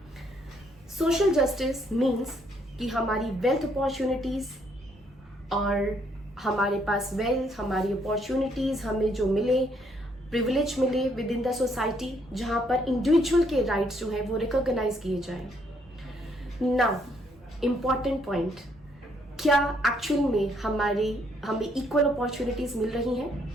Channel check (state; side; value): normal; both; correlation 0.70